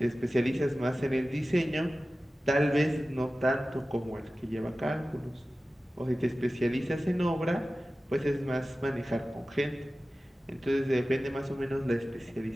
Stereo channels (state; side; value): normal; both; correlation 0.95